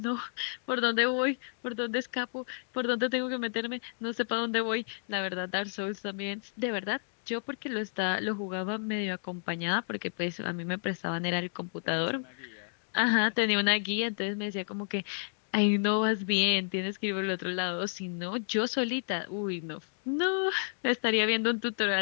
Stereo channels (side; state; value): right; silent; digital silence